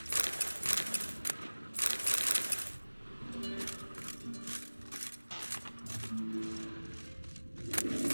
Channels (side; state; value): both; inverted; correlation -1.00